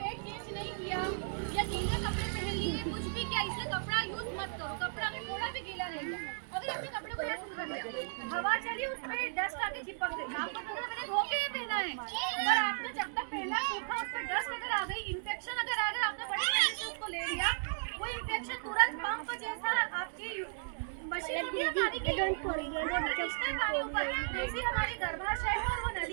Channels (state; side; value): silent; left; digital silence